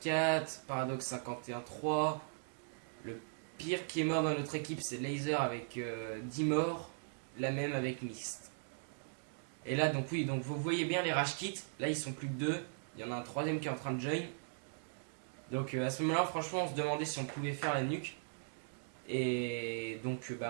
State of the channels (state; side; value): silent; left; digital silence